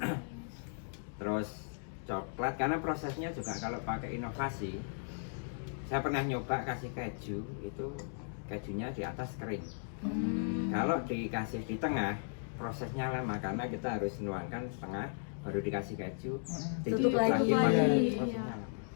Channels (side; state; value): right; silent; digital silence